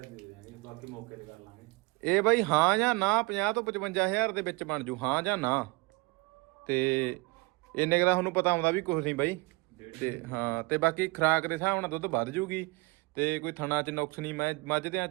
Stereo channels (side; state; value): left; quieter; 25.1 dB